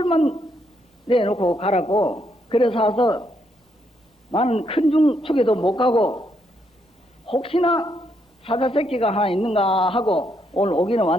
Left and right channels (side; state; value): both; normal; correlation 0.76